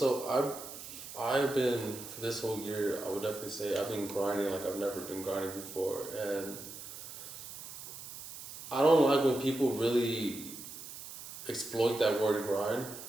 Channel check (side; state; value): right; noise; hiss, 12 dB below the sound